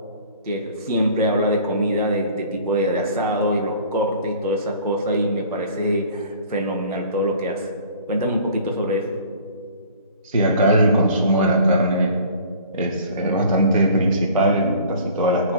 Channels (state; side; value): inverted; both; correlation -0.49